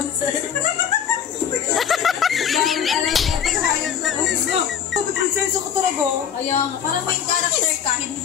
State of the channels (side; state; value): right; quieter; 8.4 dB